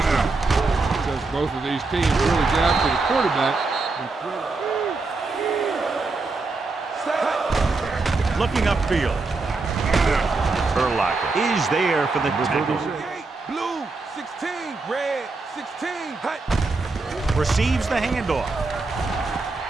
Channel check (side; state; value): left; quieter; 3.7 dB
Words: one. Because both of these teams really get after the quarterback. Looking upfield. Urlacher is there for the tackle. Blue, 16, red, 16. Receives the handoff.